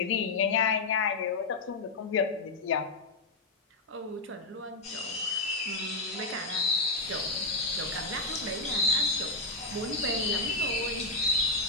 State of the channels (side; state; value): right; quieter; 3.2 dB